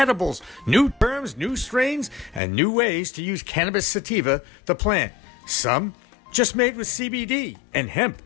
new terms, new strains, and new ways to use cannabis sativa, the plant. Some just made with CBD, and hemp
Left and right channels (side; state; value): right; drops out; at 2.4 s